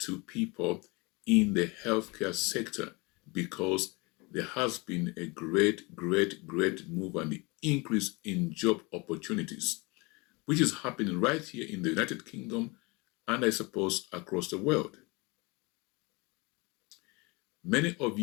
people in the healthcare sector because there has been a great move and increase in job opportunities, which is happening right here in the United Kingdom and I suppose across the world. Many of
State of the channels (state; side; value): quieter; right; 26.7 dB